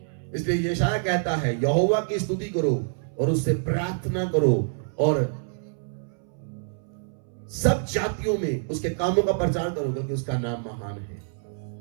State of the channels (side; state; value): left; silent; 61 dB below the other